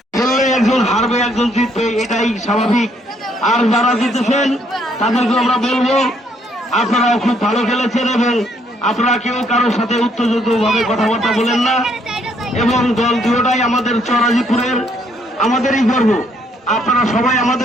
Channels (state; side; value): normal; both; correlation 0.69